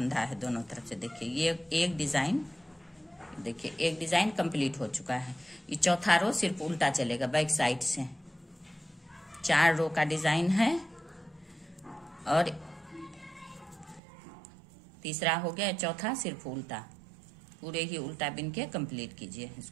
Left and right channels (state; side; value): drops out; left; at 14.0 s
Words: है दोनों तरफ से। देखिए ये एक डिजाइन, देखिए एक डिजाइन कंप्लीट हो चुका है। ये चौथा रो सिर्फ उल्टा चलेगा बैक साइड से। 4 रो का डिजाइन है और तीसरा हो गया, चौथा सिर्फ उल्टा, पूरे ही उल्टा बिन के कंप्लीट कीजिए